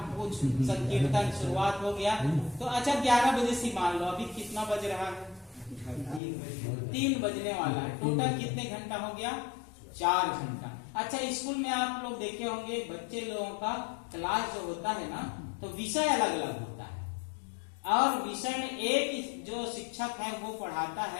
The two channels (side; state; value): right; drops out; at 6.2 s